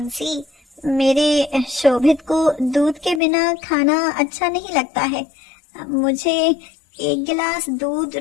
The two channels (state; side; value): drops out; right; at 3.2 s